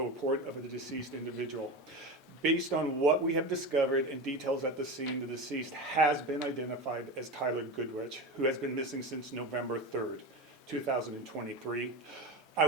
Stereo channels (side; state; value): both; normal; correlation 0.23